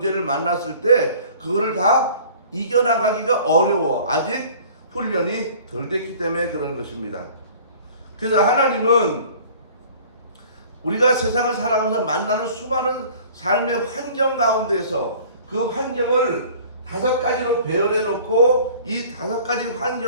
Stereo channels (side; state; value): both; inverted; correlation -0.48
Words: 만났을 때 그거를 다 이겨나가기가 어려워. 아직 훈련이 덜 됐기 때문에 그런 것입니다. 그래서 하나님은 우리가 세상을 살아가면서 만나는 수많은 삶의 환경 가운데서 그 환경을 5가지로 배열해 놓고 이 5가지